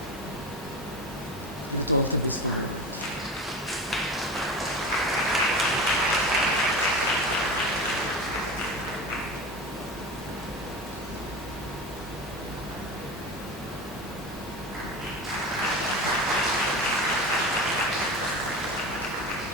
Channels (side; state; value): both; normal; correlation 0.29